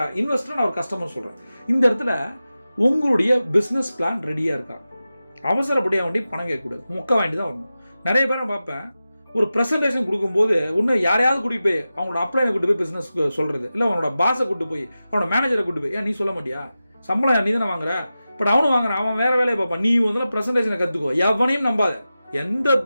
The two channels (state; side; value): inverted; both; correlation -0.94